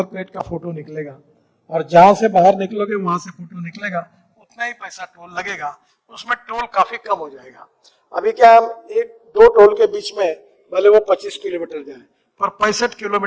प्लेट का फोटो निकलेगा और जहां से बाहर निकलोगे वहां से फोटो निकलेगा, उतना ही पैसा टोल लगेगा, उसमें टोल काफी कम हो जाएगा। अभी क्या हम एक दो टोल के बीच में भले वो 25 किलोमीटर जाए पर 65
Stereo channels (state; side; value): identical; both; correlation 1.00